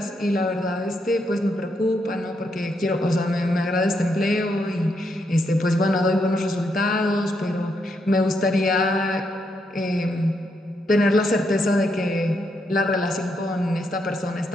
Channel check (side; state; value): both; normal; correlation 0.79